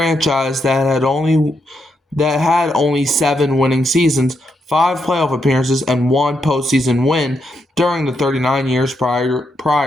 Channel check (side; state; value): both; normal; correlation 0.81